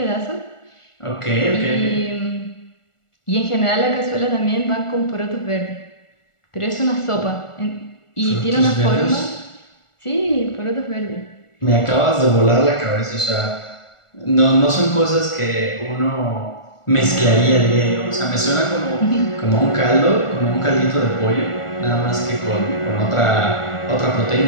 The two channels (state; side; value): late; right; 1.4 ms